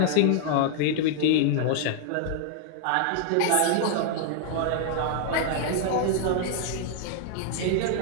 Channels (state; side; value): different; both; correlation -0.01